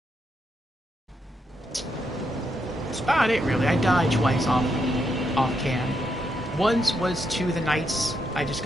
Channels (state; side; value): normal; both; correlation 0.80